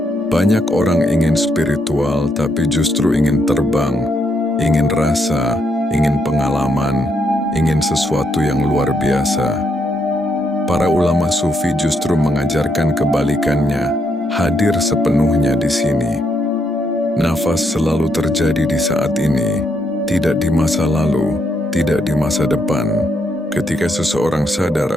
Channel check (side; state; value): both; normal; correlation 0.77